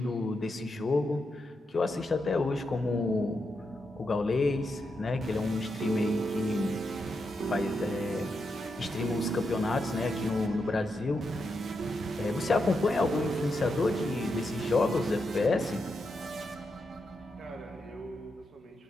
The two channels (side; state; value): both; normal; correlation 0.84